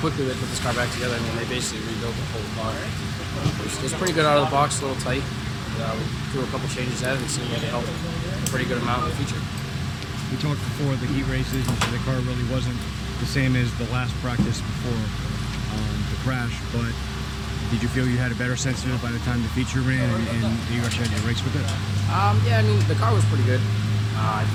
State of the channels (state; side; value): identical; both; correlation 1.00